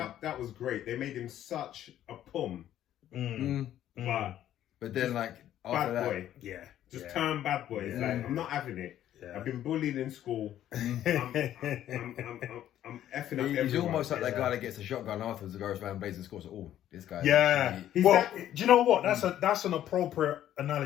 That was great. They made him such a pum. But then like after bad boy. Just turn bad boy. It's like, I'm not having it. I've been bullied in school. I'm effing up everyone. He's almost like that guy that gets a shotgun afterwards and goes around blazing scores. Oh, this guy. Yeah. Well, do you know what? That's an appropriate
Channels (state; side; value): quieter; right; 11.8 dB